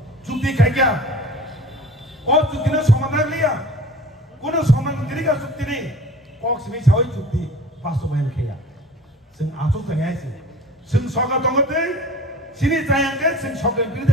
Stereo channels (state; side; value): normal; both; correlation 0.43